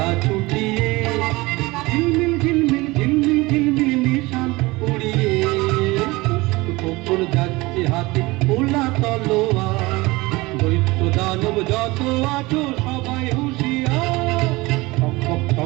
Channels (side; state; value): left; quieter; 22.0 dB